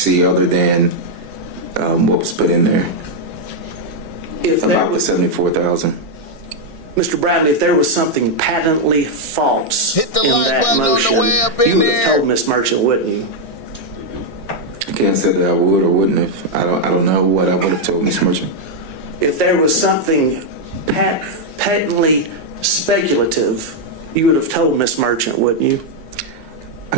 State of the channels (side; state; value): right; late; 1.6 ms